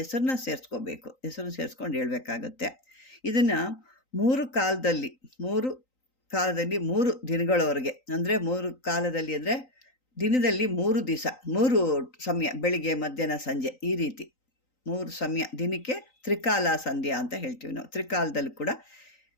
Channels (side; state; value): right; late; 3.9 ms